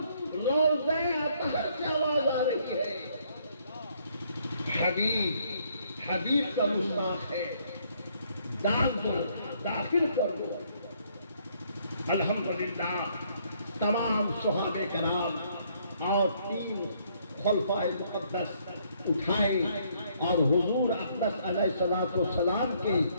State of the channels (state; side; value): inverted; both; correlation -0.67